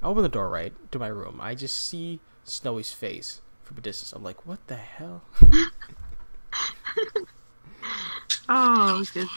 I open the door, right, to my room. I just see Snowy's face from a distance. I'm like, what the hell? Oh,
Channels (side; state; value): both; inverted; correlation -1.00